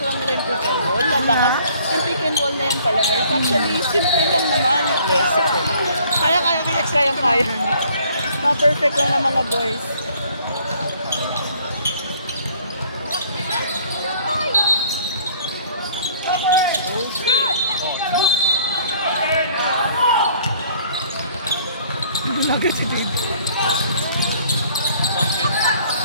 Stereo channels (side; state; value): both; inverted; correlation -0.58